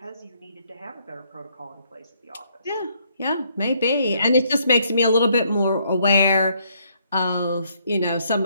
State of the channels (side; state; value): both; inverted; correlation -0.69